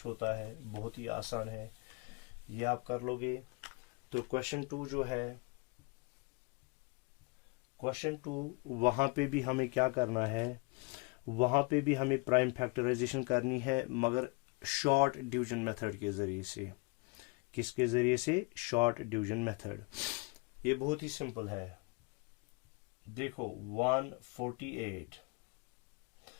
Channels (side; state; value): right; quieter; 29.0 dB